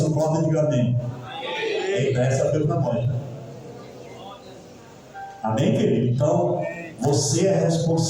concorda, diga amém. Essa foi para nós. Amém, querido? Então, você é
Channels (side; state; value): both; identical; correlation 1.00